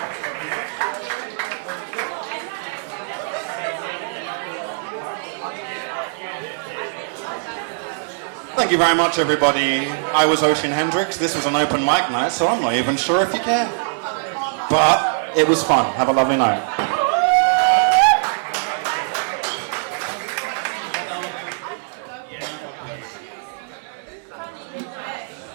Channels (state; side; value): silent; left; 64 dB below the other